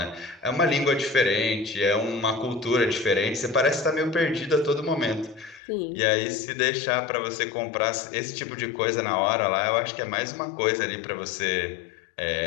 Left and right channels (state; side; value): drops out; right; at 5.6 s